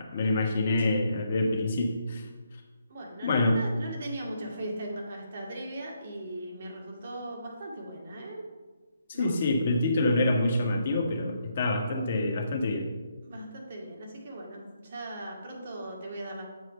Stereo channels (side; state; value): both; inverted; correlation -0.76